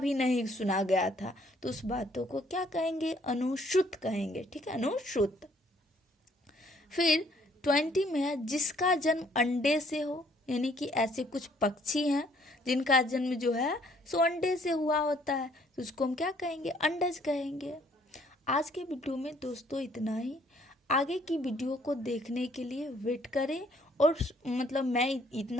नहीं सुना गया था, तो उस बातों को क्या कहेंगे? अनुश्रुत कहेंगे, ठीक है, अनुश्रुत। फिर 20 में है जिसका जन्म अंडे से हो, यानी कि ऐसे कुछ पक्षी हैं जिनका जन्म जो है सो अंडे से हुआ होता है, तो उसको हम क्या कहेंगे? अंडज कहेंगे। आज के वीडियो में दोस्तों इतना ही। आगे की वीडियो को देखने के लिए वेट करें। और मतलब मैं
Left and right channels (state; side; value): normal; both; correlation 0.63